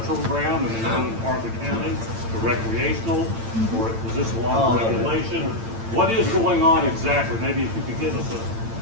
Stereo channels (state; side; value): late; left; 8.9 ms